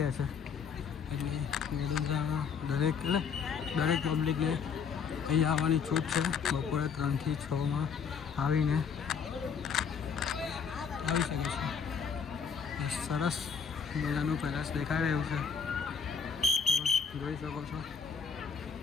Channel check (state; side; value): quieter; right; 6.3 dB